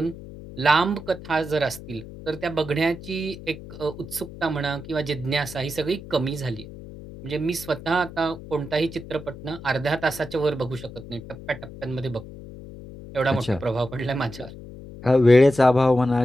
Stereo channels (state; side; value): noise; left; hum, 14 dB below the sound